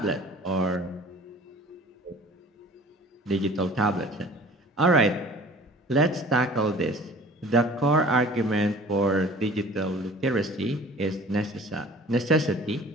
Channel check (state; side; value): normal; both; correlation 0.47